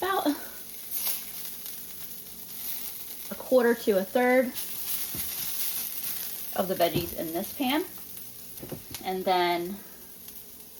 1/4 to 1/3 of the veggies in this pan. And then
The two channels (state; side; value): identical; both; correlation 1.00